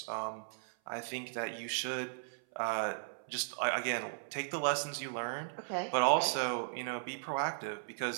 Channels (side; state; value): left; silent; 53 dB below the other